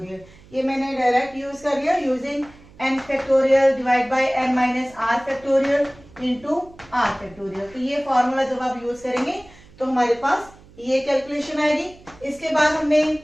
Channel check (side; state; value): right; noise; hum, 24 dB below the sound